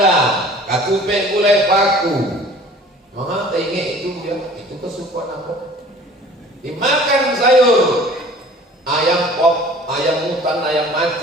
katupe gulai paku. Mama tengok itu dia, itu kesukaan apa? Dimakan sayur, ayam pop, ayam hutan, ayam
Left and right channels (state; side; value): normal; both; correlation 0.48